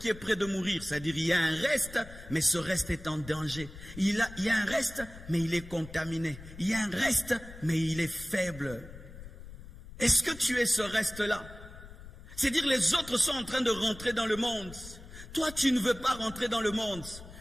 est près de mourir. C'est-à-dire, il y a un reste, mais ce reste est en danger. Il y a un reste, mais il est contaminé. Il y a un reste, mais il est faible. Est-ce que tu es ce reste-là? C'est-à-dire, les autres sont en train de rentrer dans le monde. Toi, tu ne veux pas rentrer dans le monde.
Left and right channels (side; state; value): left; noise; rumble, 15 dB below the sound